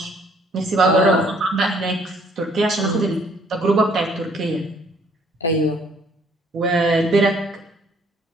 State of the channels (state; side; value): normal; both; correlation 0.62